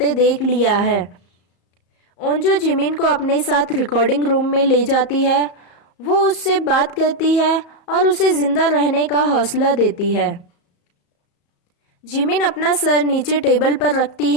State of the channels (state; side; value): late; right; 34 ms